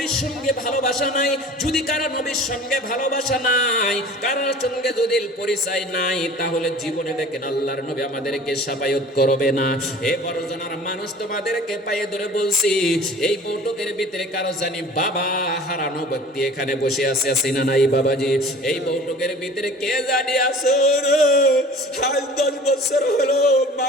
সঙ্গে ভালোবাসা নাই। যদি কারো নবীর সঙ্গে ভালোবাসা নাই, কারোর সঙ্গে যদি পরিচয় নাই, তাহলে জীবনে দেখেন আল্লাহর নবী আমাদেরকে সাফায়াত করবে না। এ বড় জনার মানুষ, তোমাদেরকে পায়ে ধরে বলছি, এই বৈঠকের ভিতরে কারো জানি বাবা হারানো ব্যক্তি এখানে বসে আছে, আছে না নাই বাবাজি? এই বৈঠকের ভিতরে কে জানি আছে রে, আজ 10 বছর হলো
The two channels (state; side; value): normal; both; correlation 0.44